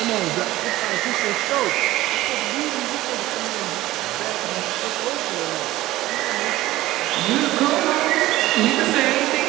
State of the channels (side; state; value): left; quieter; 16.6 dB